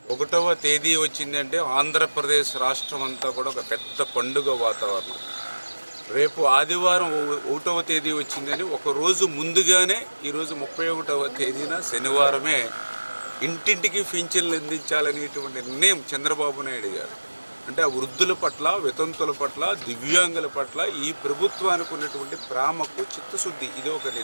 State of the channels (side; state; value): both; inverted; correlation -1.00